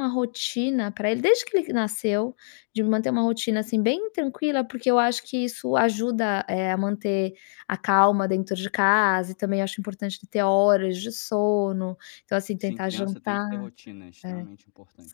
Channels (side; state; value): right; silent; digital silence